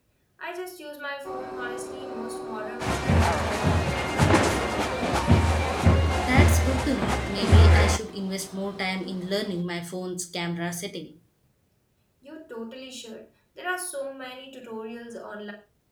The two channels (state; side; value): identical; both; correlation 1.00